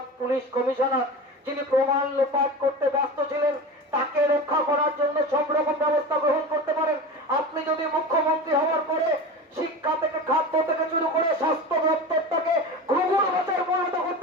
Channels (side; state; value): both; normal; correlation 0.29